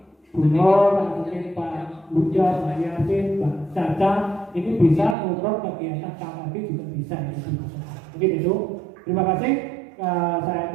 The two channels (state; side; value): drops out; left; at 5.2 s